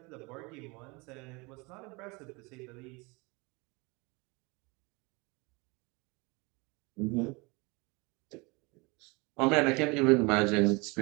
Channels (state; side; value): quieter; left; 27.0 dB